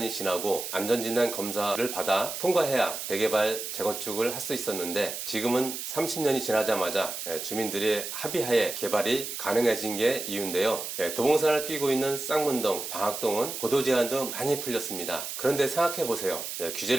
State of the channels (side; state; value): right; noise; hiss, 6 dB below the sound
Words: 지나고 안전진단 검사를 받아 통과해야 재개발, 재건축을 할 수 있었는데 지금은 30년이 지나자마자 주민들의 합의하에 개발이 가능해진 게 이유인데요. 도봉산을 끼고 있는 쌍문동, 방학동은 고도 제한도 많이 풀렸습니다. 그런데 생각해보세요.